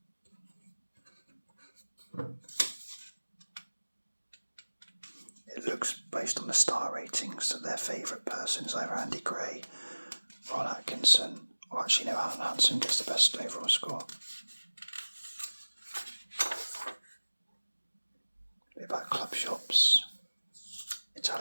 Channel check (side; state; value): both; inverted; correlation -1.00